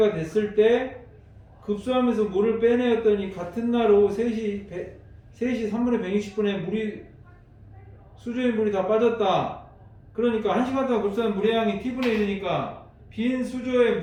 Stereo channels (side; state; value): both; identical; correlation 1.00